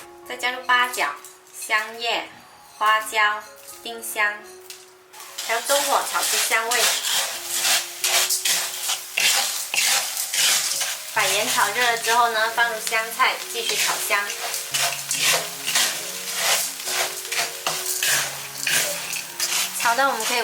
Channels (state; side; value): identical; both; correlation 1.00